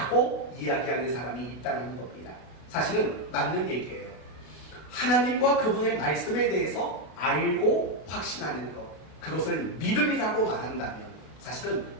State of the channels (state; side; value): late; right; 33 ms